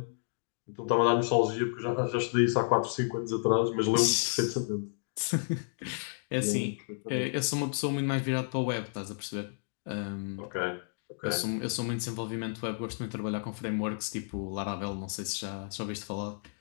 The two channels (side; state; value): right; silent; digital silence